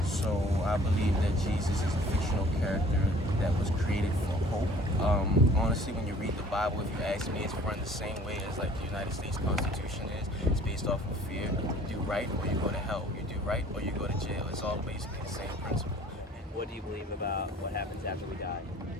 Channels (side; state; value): both; normal; correlation 0.52